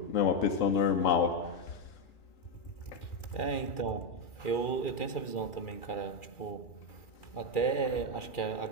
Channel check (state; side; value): late; right; 2.4 ms